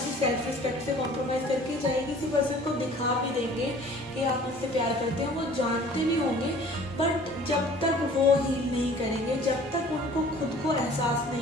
सेल्फ रिस्पेक्ट से कॉम्प्रोमाइज़ करके चाहे किसी पर्सन को दिखा भी देंगे कि आप उनसे प्यार करते हैं, वो जानते भी होंगे, बट जब तक वो हील नहीं करेंगे, जब तक उनको खुद को एहसास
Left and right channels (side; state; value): both; normal; correlation 0.50